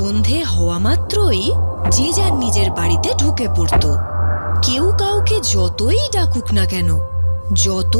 হওয়া মাত্রই যে যার নিজের বাড়িতে ঢুকে পড়ত। কেউ কাউকে যতই ডাকুক না কেন,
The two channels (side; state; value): both; inverted; correlation -1.00